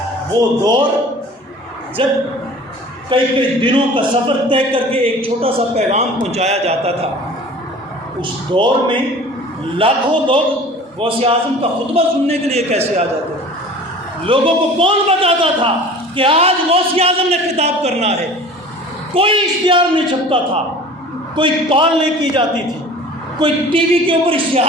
وہ دور جب کئی کئی دنوں کا سفر طے کر کے ایک چھوٹا سا پیغام پہنچایا جاتا تھا، اس دور میں لاکھوں لوگ غوث اعظم کا خطبہ سننے کے لیے کیسے آ جاتے تھے؟ لوگوں کو کون بتاتا تھا کہ آج غوث اعظم نے خطاب کرنا ہے؟ کوئی اشتہار نہیں چھپتا تھا، کوئی کال نہیں کی جاتی تھی، کوئی ٹی وی کے اوپر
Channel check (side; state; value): both; normal; correlation 0.43